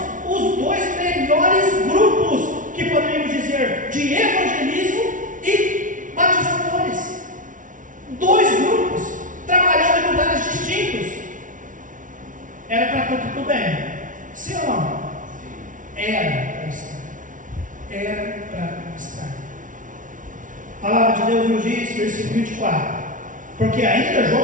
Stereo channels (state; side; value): late; left; 0.38 ms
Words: os dois melhores grupos que poderíamos dizer de evangelismo e batizadores. Dois grupos trabalhando em lugares distintos. Era para tudo bem? Sim ou não? Era para estar. Era para estar. A palavra de Deus nos diz, versículo 24: porque ainda